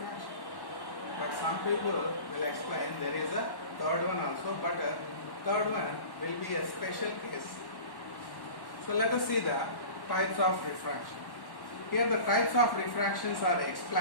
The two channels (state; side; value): late; right; 1.1 ms